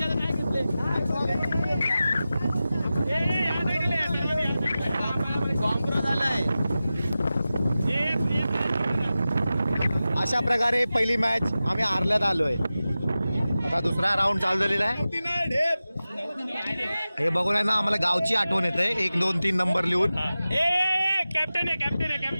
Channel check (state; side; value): inverted; both; correlation -0.95